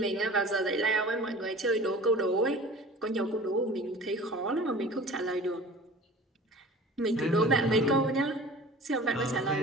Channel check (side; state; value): both; normal; correlation 0.42